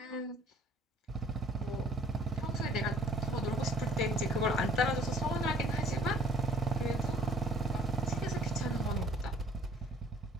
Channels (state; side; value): normal; both; correlation 0.55